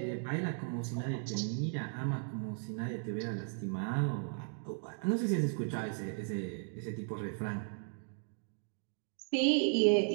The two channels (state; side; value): silent; left; 54 dB below the other